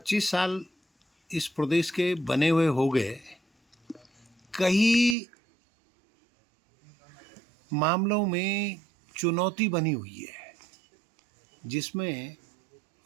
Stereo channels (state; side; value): drops out; left; at 5.2 s